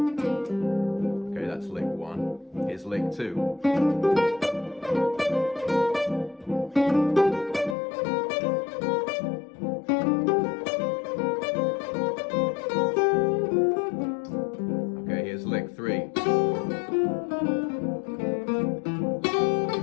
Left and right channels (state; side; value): drops out; right; at 7.8 s